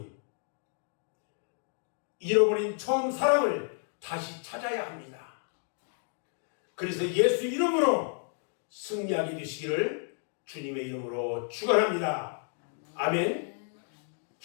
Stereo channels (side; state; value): right; silent; 57 dB below the other